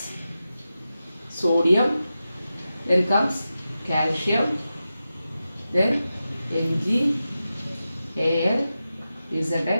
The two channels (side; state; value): both; inverted; correlation -0.92